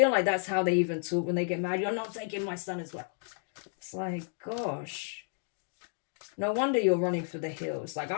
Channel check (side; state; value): right; silent; 57 dB below the other